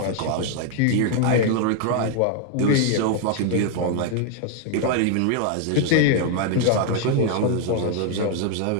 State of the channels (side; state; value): both; different; correlation 0.00